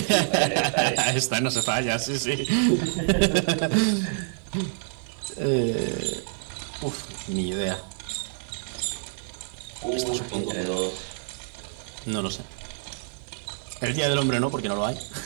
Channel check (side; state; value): left; silent; digital silence